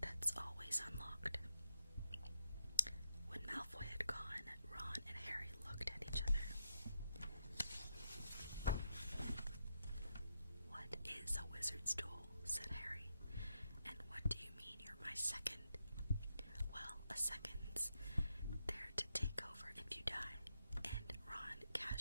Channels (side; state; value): both; inverted; correlation -0.82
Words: That's always unlocked." When Malfoy had gone, Ron and Harry looked at each other. "What is a wizard's duel?" said Harry. "And what do you mean you're my second?" "Well, a second's there to take over if you die." And